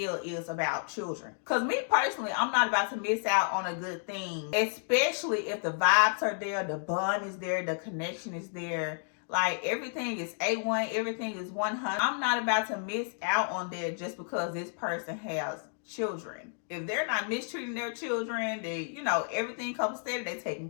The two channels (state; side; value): silent; right; 57 dB below the other